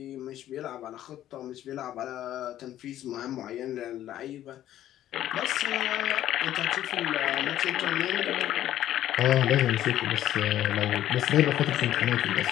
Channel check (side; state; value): right; quieter; 12.5 dB